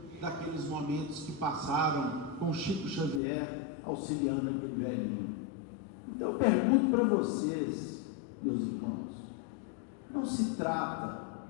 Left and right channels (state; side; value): drops out; right; at 3.2 s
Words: daqueles momentos que passaram com Chico Xavier auxiliando aquele velhinho. Então eu pergunto para vocês, meus irmãos, não se trata